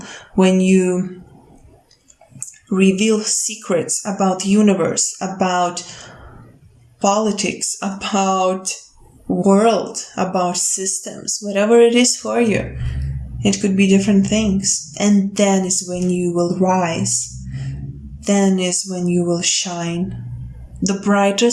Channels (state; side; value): identical; both; correlation 1.00